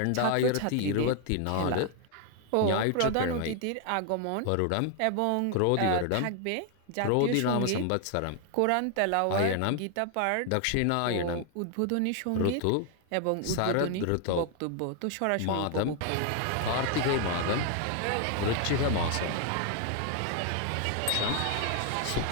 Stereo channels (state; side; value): different; both; correlation 0.00